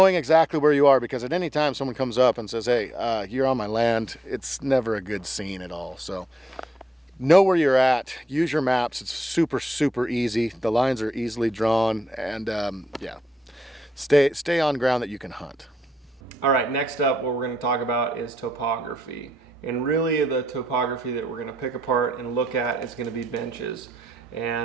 exactly where you are, because at any time someone comes up and says, hey, you're on my land, it's never a good scene at all. So know where you're at, use your maps. It's super easy. The lines are easily drawn, and yeah, stay on ground that you can hunt. All right, next up, what we're going to talk about is topography. And really the topography that we're going to pick apart and look at is going to be benches.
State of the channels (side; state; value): both; normal; correlation 0.81